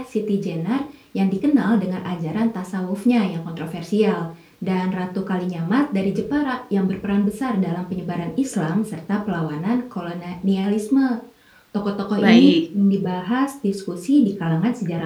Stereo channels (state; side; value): identical; both; correlation 1.00